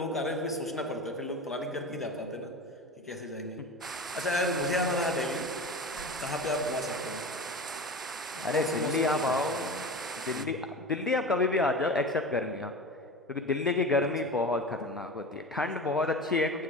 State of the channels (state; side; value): normal; both; correlation 0.31